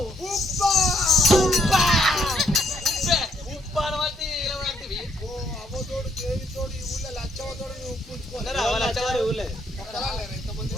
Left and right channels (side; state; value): both; normal; correlation 0.71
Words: ఉప్పు అనబట్టి అవ్వతోడు దేవితోడు ఈ ఊళ్ళో లచ్చవతోడు ఉప్పు